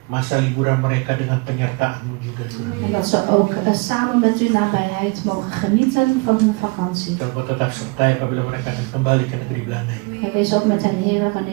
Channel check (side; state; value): left; quieter; 28.5 dB